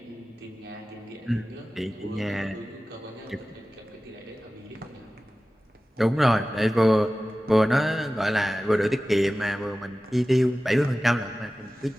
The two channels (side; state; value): both; normal; correlation 0.96